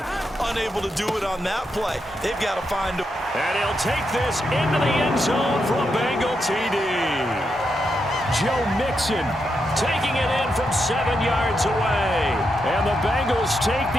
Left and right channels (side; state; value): both; normal; correlation 0.83